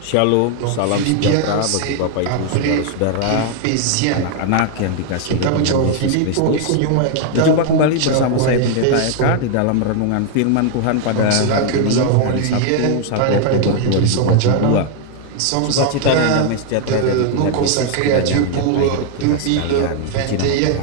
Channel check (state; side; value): different; both; correlation 0.00